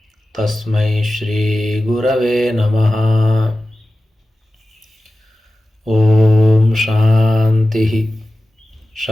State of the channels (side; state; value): both; normal; correlation 0.95